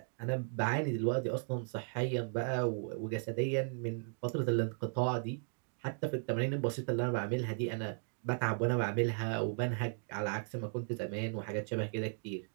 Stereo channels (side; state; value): left; silent; 54 dB below the other